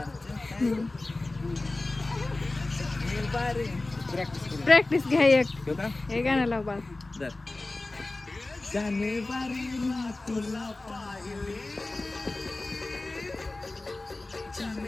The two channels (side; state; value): right; quieter; 3.0 dB